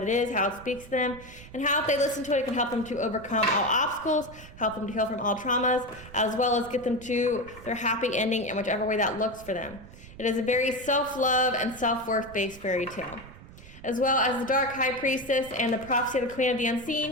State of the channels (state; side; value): noise; right; rumble, 18 dB below the sound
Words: it is, how it speaks to them, and how if they listen to it, it can help them to overcome all obstacles, help them to heal from all traumas, as well as get them to their happy ending in whichever way that looks for them. It is a very self-love and self-worth based fairy tale. As well as The Dark High Priestess and The Prophecy of the Queen of the